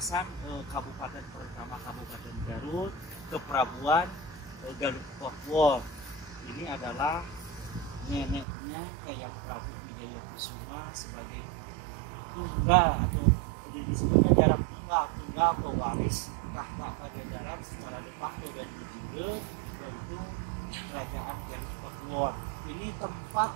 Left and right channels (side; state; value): left; drops out; at 8.5 s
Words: Kabupaten pertama Kabupaten Garut, Keprabuan Garut Papua. Ini adalah neneknya Ayam Prabu Wijaya Kusuma sebagai tunggal atau disebutnya jarak tunggal pewaris tahta Pajajaran secara de facto dan de jure, yaitu Kerajaan Galih Pakuwon. Ini